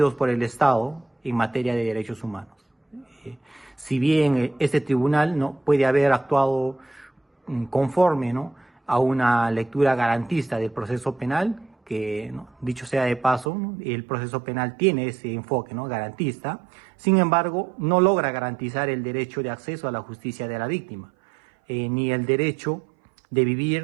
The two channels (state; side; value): drops out; left; at 13.5 s